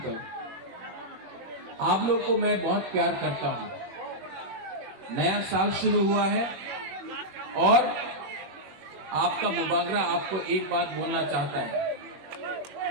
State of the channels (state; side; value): late; left; 21 ms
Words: आप लोग को मैं बहुत प्यार करता हूं। नया साल शुरू हुआ है और आपका मुबागरा आपको एक बात बोलना चाहता है।